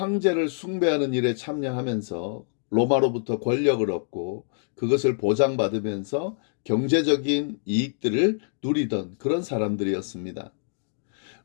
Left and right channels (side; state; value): right; silent; digital silence